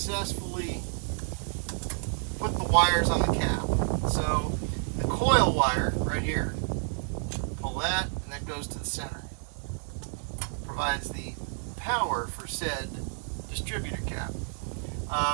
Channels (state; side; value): silent; left; 58 dB below the other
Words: put the wires on the cap. So the coil wire right here, pull that, and that goes to the center. Provides the power for said distributor cap.